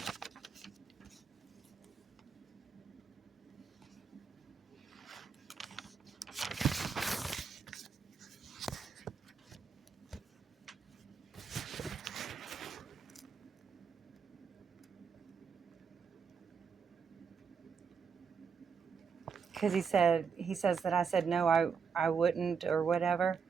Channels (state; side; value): quieter; left; 6.1 dB